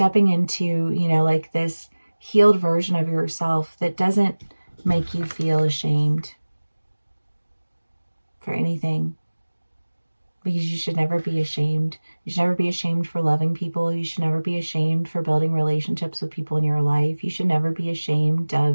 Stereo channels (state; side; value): inverted; both; correlation -1.00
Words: into, you know, like this healed version of yourself that doesn't make you feel ashamed for anything. Because you should never be ashamed. You should never be ashamed for loving people. You should never be ashamed for building relationships with people in your life. You should never be ashamed